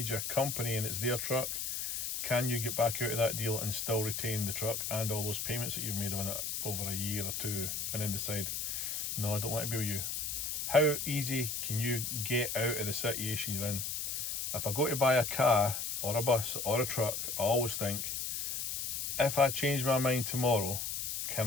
company and it's their truck, can you get back out of that deal and still retain the truck and all those payments that you've made on it over a year or two, and then decide, no, I don't want to be with you? How easy can you get out of the situation you're in? If I go to buy a car or a bus or a truck, I always think, if I change my mind tomorrow, can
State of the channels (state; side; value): noise; left; hiss, 3 dB below the sound